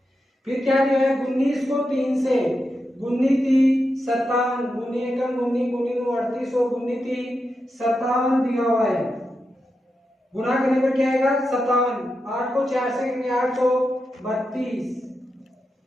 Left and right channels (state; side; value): normal; both; correlation 0.88